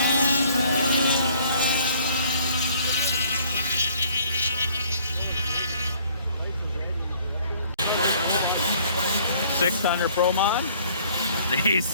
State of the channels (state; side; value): inverted; both; correlation -0.59